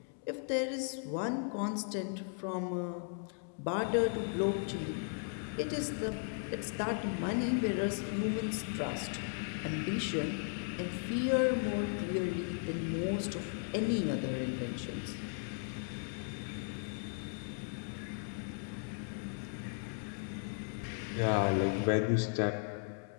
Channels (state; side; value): silent; right; 53 dB below the other